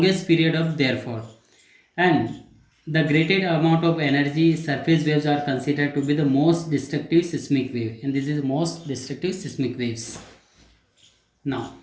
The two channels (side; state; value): both; identical; correlation 1.00